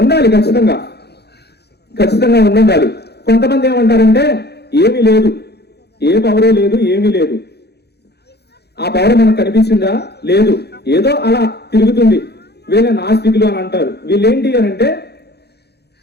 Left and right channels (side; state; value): right; late; 0.48 ms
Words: ఉండాలి, ఖచ్చితంగా ఉండాలి. కొంతమంది ఏమంటారంటే ఏమీ లేదు, ఏ పవరు లేదు, ఏమీ లేదు. ఆ పవర్ మనకు కనిపించిందా? లేదు, ఏదో అలా తిరుగుతుంది. వీళ్ళ నాస్తికులు అని అంటారు. వీళ్ళేంటి అని అంటే